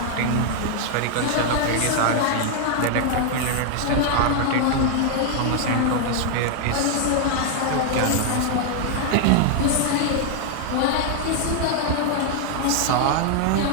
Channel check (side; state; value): both; different; correlation 0.00